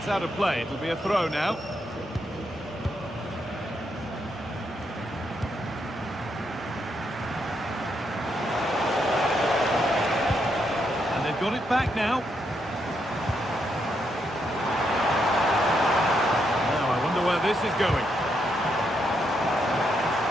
out of play. It'll be a throw now. And they've got it back now. Where this is going.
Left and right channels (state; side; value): normal; both; correlation 0.79